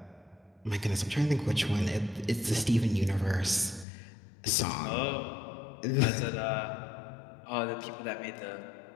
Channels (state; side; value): drops out; right; at 3.9 s